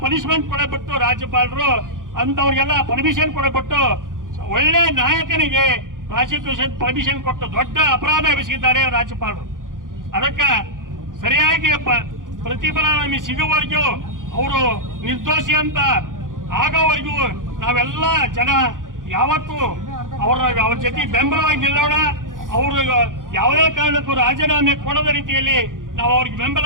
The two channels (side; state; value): left; late; 0.89 ms